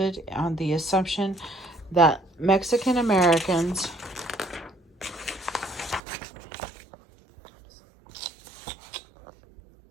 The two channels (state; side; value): drops out; left; at 6.0 s